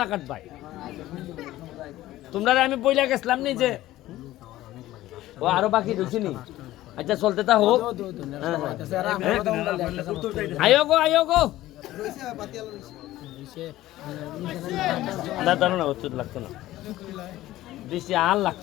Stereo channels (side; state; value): right; quieter; 15.5 dB